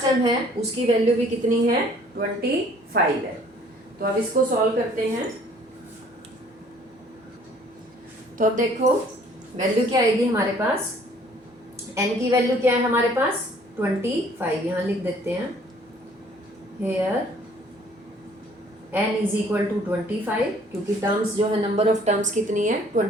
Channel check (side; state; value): both; normal; correlation 0.57